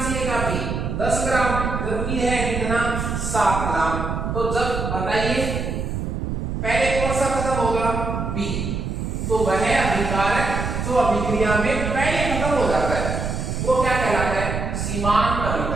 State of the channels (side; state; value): right; noise; rumble, 3 dB below the sound